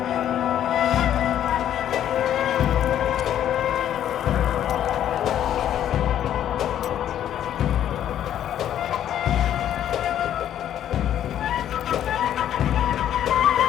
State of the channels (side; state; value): right; quieter; 10.7 dB